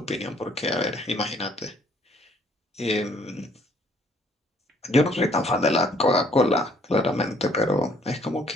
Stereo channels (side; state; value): both; normal; correlation 0.62